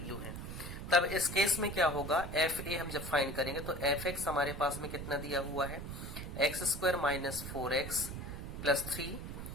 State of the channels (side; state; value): right; noise; rumble, 7 dB below the sound